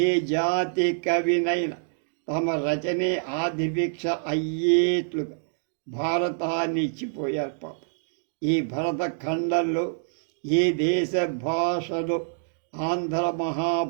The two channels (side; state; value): left; silent; digital silence